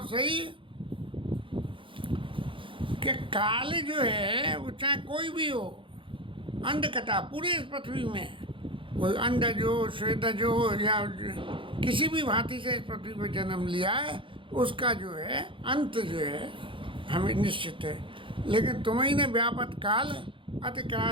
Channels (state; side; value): late; left; 0.25 ms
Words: सही कि काल जो है वो चाहे कोई भी हो, अंडकटा पूरे इस पृथ्वी में कोई अंडज हो, श्वेतज हो या किसी भी भांति से इस पृथ्वी पर जन्म लिया है, उसका जो है अंत जो है हमें निश्चित है। लेकिन तुम्हें ने व्यापत काल अति